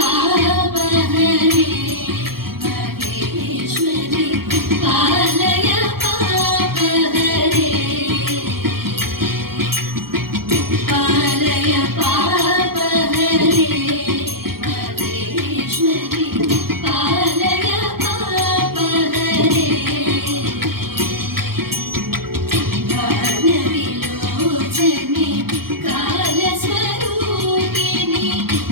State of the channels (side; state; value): left; late; 0.94 ms